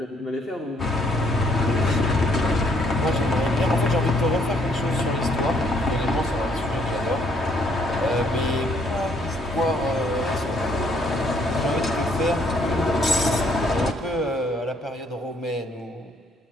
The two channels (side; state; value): both; normal; correlation 0.67